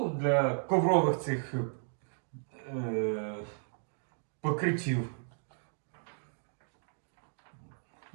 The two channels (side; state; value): left; silent; digital silence